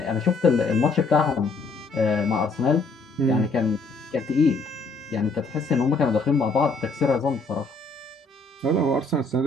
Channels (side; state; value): right; quieter; 3.5 dB